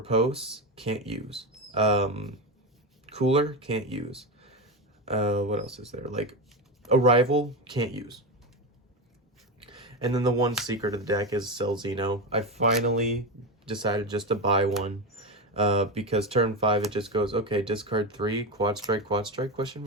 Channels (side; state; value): both; normal; correlation 0.15